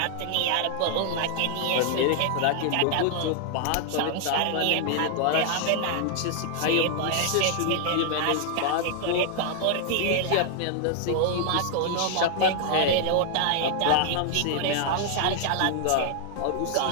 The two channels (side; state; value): both; different; correlation 0.00